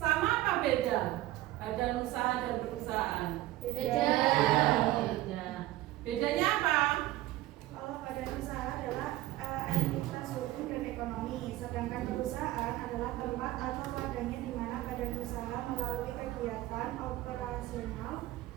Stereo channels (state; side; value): quieter; left; 16.2 dB